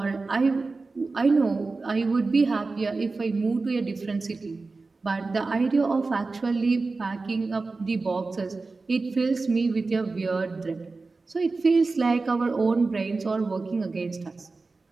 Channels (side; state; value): left; quieter; 3.8 dB